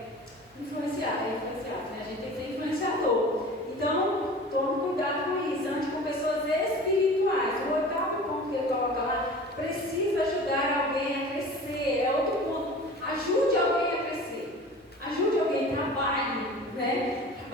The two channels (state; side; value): normal; both; correlation 0.39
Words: influenciadas, né? A gente tem que ser influenciador. Então, tome cuidado com isso, ande com pessoas espirituais. O oitavo ponto que ele coloca lá, precisa ajudar alguém a crescer. É outro ponto. Ajude alguém a crescer. Ajude alguém, trabalhe, né?